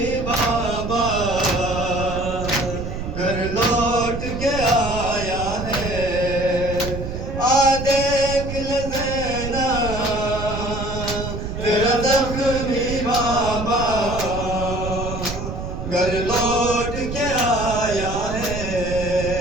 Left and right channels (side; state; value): right; noise; rumble, 6 dB below the sound